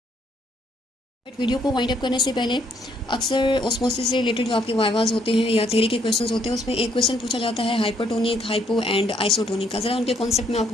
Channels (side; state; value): both; normal; correlation 0.69